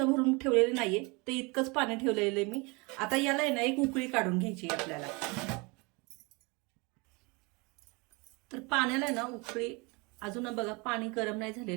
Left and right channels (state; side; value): quieter; left; 27.9 dB